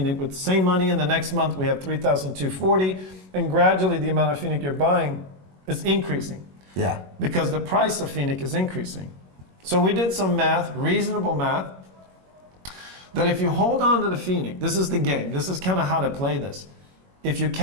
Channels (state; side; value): late; left; 21 ms